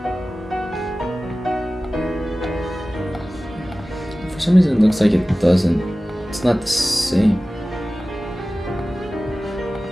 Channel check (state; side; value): normal; both; correlation 0.97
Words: it looks like it doesn't. It's not the same.